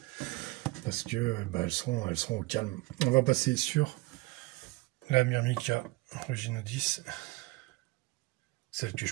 Parce que elles seront au calme. On va passer sur la Myrmica Ruginodis. Celle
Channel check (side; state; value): left; quieter; 21.9 dB